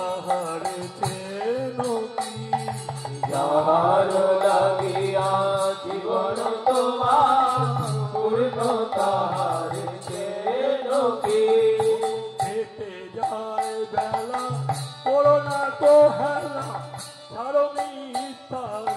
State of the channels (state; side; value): identical; both; correlation 1.00